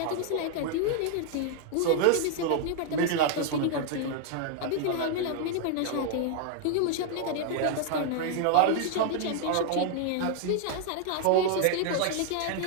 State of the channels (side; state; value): both; different; correlation 0.00